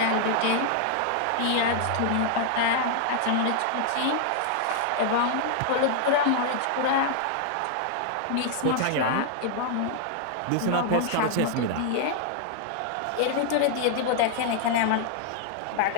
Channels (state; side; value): different; both; correlation 0.00